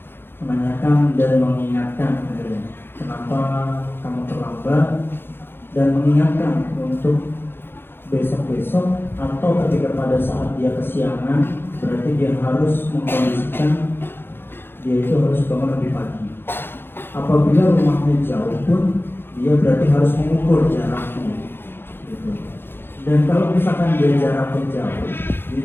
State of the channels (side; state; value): right; late; 0.10 ms